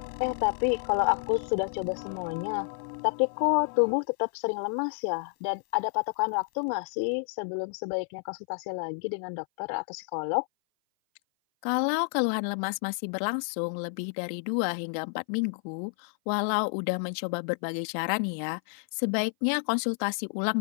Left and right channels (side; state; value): right; silent; 56 dB below the other